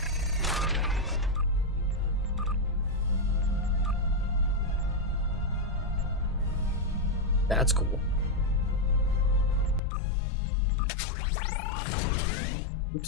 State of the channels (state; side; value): drops out; right; at 9.8 s